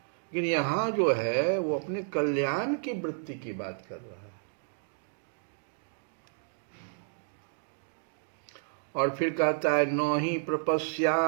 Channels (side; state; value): left; silent; digital silence